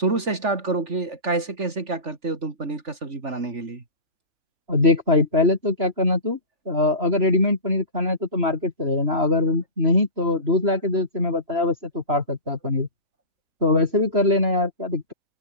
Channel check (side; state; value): left; late; 3.4 ms